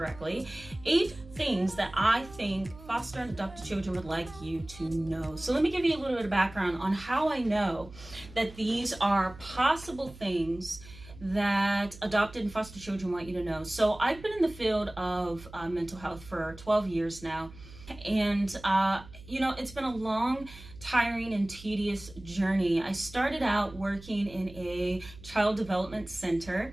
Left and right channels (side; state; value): right; noise; hum, 18 dB below the sound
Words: 8 things that I think foster and adopted children would like you to know. So let me give you a little bit of background on how I know that these are possible things that adopted and foster children want you to know. So I've been in the field of mental health for 12 years now. And, it's been a long, tiring, and tedious journey. I started out working in a child development